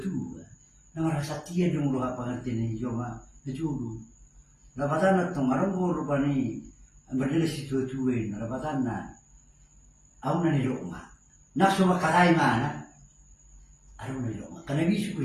nama rasa tiada dong lo apa ngerti ni cuma dulu, lawatan itu marah mulu pani berdiri si dua, lawatan aku nani rokok, nak semua kalai mana? Aduh nilo, karena bisa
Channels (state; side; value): identical; both; correlation 1.00